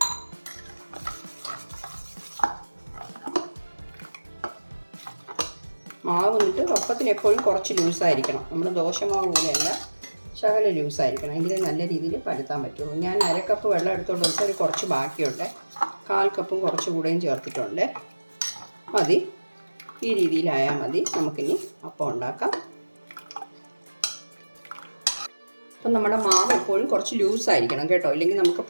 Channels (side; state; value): both; inverted; correlation -1.00